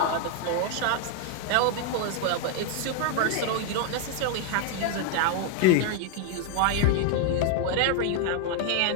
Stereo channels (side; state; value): both; different; correlation 0.00